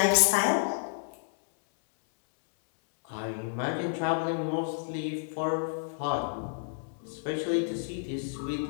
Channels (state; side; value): silent; right; 58 dB below the other